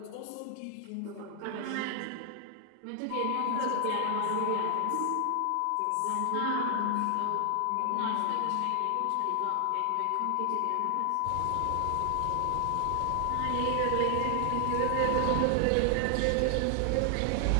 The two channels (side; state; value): both; different; correlation 0.00